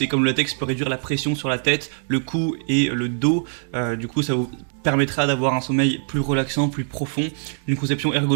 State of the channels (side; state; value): left; silent; digital silence